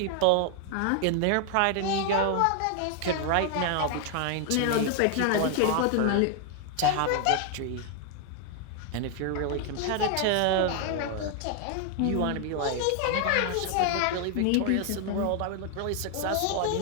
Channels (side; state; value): both; different; correlation 0.00